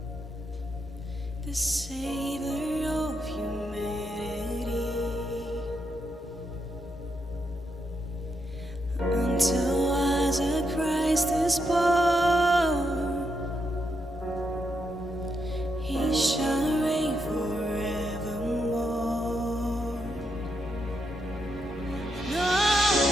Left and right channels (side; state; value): both; normal; correlation 0.81